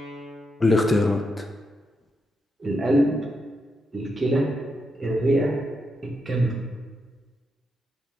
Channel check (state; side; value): normal; both; correlation 0.83